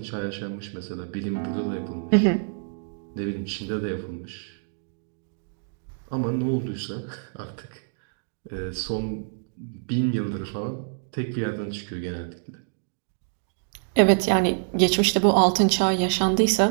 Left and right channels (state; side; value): silent; left; digital silence